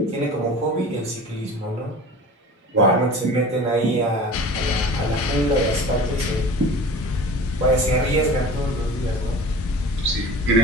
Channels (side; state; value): both; normal; correlation 0.39